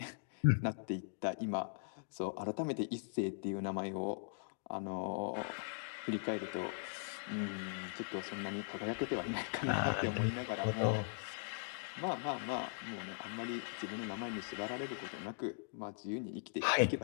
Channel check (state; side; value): silent; right; digital silence